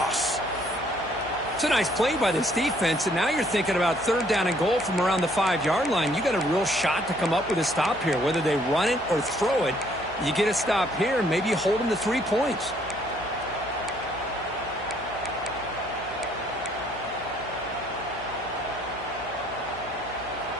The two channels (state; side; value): noise; left; hum, 19 dB below the sound